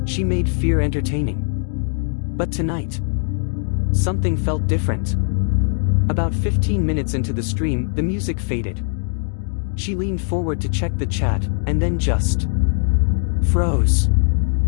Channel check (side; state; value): right; silent; 59 dB below the other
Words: She made fear entertaining. But tonight, something felt different. About 15 minutes into the stream, the music faded. She leaned forward to check the chat, and then just froze.